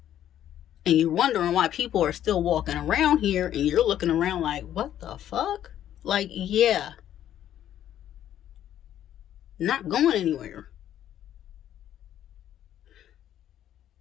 And you're wondering why people are still walking around here and you're looking around like, what the fuck? Like, yeah, not going anywhere.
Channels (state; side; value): quieter; right; 11.2 dB